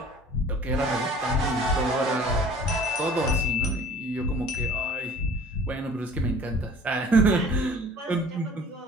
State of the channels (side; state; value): both; normal; correlation 0.48